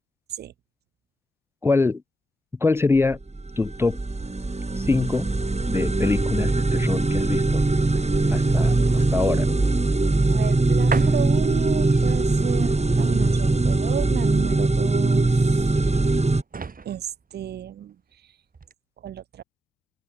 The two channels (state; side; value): normal; both; correlation 0.86